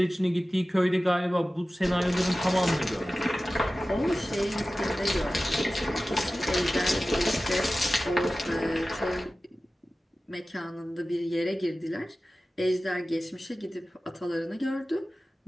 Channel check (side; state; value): both; normal; correlation 0.96